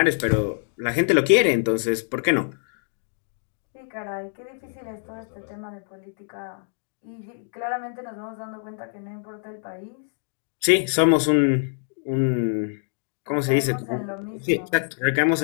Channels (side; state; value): right; silent; digital silence